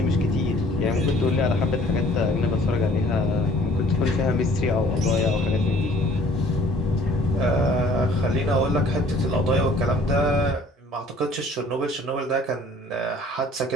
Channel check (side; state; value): both; normal; correlation 0.54